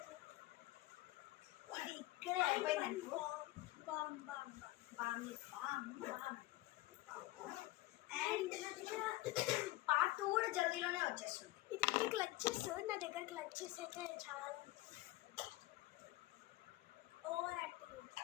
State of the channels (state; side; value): quieter; right; 18.8 dB